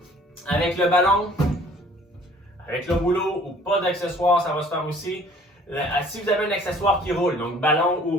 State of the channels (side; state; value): both; normal; correlation 0.54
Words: avec le ballon, avec le rouleau ou pas d'accessoire, ça va se faire aussi. Si vous avez un accessoire qui roule, donc ballon ou